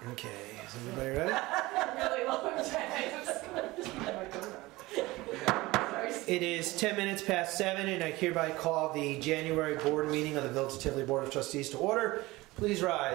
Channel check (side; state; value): left; quieter; 20.2 dB